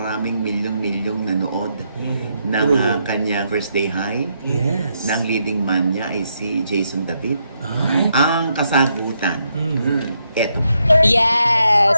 milyong-milyong nanood ng kanyang First Day High? Yes. Na ang leading man niya ay si Jason David. Ay. Ang kasagutan, eto. Yes,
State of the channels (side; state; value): both; inverted; correlation -0.79